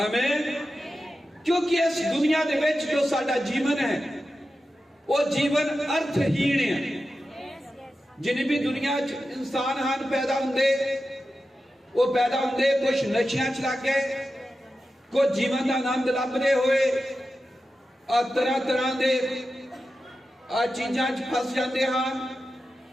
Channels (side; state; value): both; normal; correlation 0.92